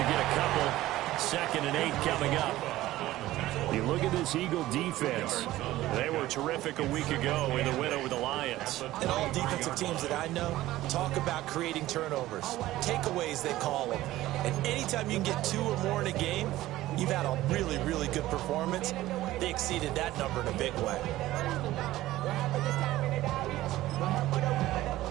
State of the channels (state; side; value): quieter; left; 15.9 dB